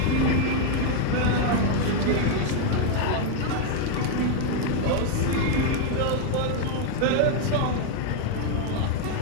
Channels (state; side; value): different; both; correlation 0.00